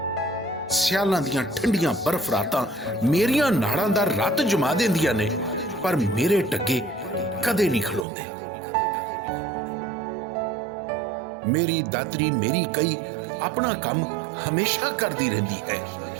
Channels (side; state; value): left; drops out; at 8.1 s